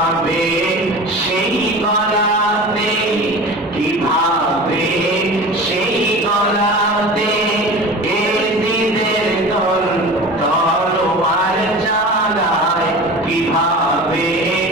সেই গলাতে, কিভাবে সেই গলাতে এজিদের দল তলোয়ার চালায়, কিভাবে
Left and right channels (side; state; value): both; normal; correlation 0.36